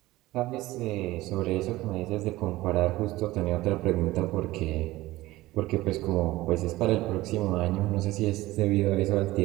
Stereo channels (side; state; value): left; quieter; 17.9 dB